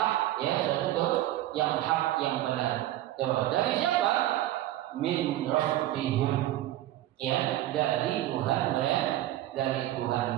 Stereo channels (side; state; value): left; quieter; 14.4 dB